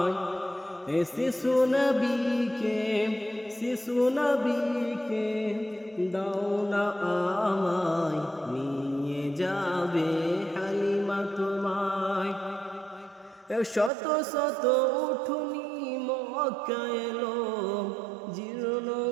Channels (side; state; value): left; drops out; at 13.9 s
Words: এই শিশু নবীকে দাও না আমায়, নিয়ে যাবে হালিমা তোমায়। শত শত উঠুনি মক্কা এলো, জীর্ণ